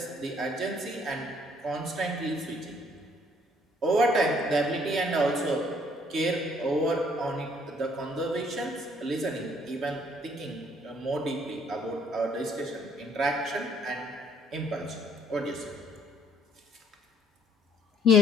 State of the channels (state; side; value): normal; both; correlation 0.62